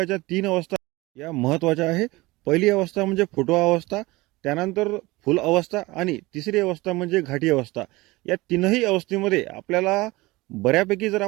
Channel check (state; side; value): quieter; left; 21.3 dB